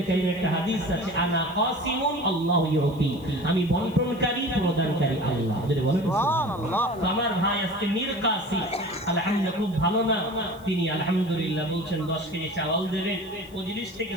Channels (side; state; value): left; noise; hiss, 26 dB below the sound